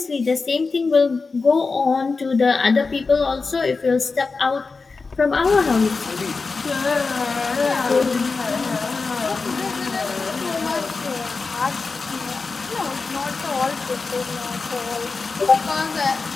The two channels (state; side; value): quieter; right; 4.3 dB